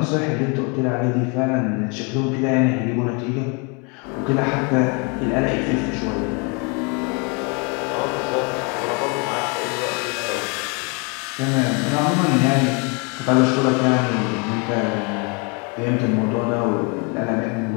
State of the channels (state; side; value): quieter; right; 33.2 dB